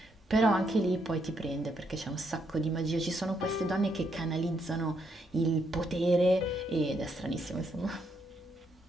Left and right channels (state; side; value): normal; both; correlation 0.76